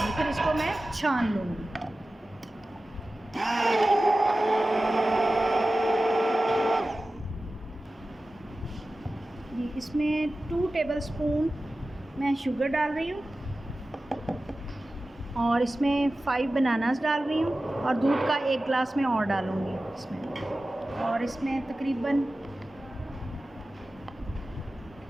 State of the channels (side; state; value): both; normal; correlation 0.95